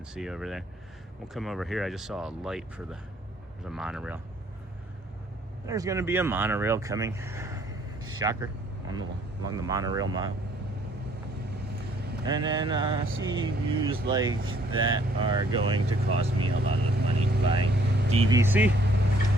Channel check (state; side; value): normal; both; correlation 0.62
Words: see over there. We'll come over here. I just saw a light for the monorail. There's going to be a monorail coming. Shocker. Along the monorail mile. And then sea views like that are going to cost me a lot of money buying DVC.